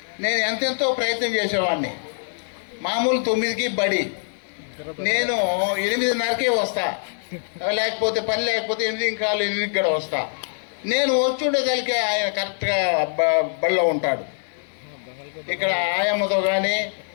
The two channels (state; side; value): silent; right; digital silence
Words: నేను ఎంతెంతో ప్రయత్నం చేసేవాడిని. మామూలు 9కి బడి, నేను 8:30కే వస్తా, లేకపోతే పని లేకపోతే 8:15 కూడా వస్తా. నేను వచ్చుండేదానికి ఆయన కరెక్ట్గా బడిలో ఉంటాడు. ఇక్కడ ఆయమ్మతో కానీ,